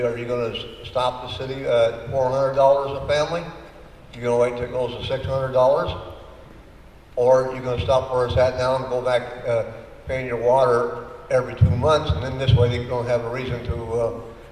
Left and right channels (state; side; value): identical; both; correlation 1.00